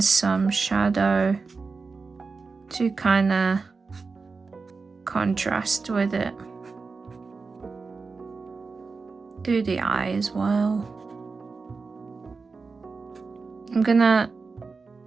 shadow to kind of contrast with it. Do the eye as well. I'm gonna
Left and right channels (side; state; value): left; quieter; 4.4 dB